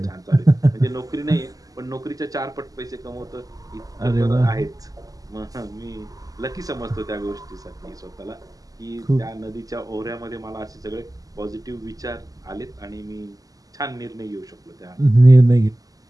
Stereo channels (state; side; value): late; left; 0.17 ms